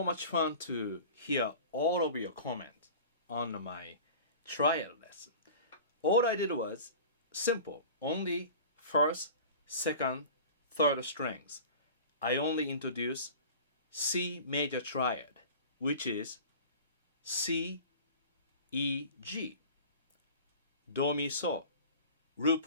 much fun to hear all of your comments on my trial lesson. All I did was simple, only first, second, third strings. I only introduced C major triad, which is C, E, G, Do, Mi, So, root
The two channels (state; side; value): inverted; both; correlation -0.39